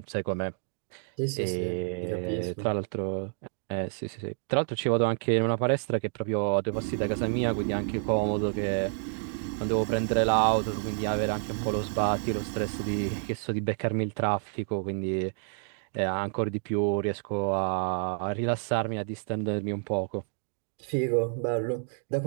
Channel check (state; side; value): silent; left; 58 dB below the other